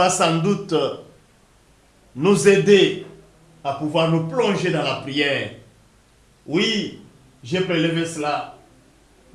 sans doute nous aider à pouvoir nous plonger dans la prière. Oui, j'ai prélevé cela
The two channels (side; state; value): both; identical; correlation 1.00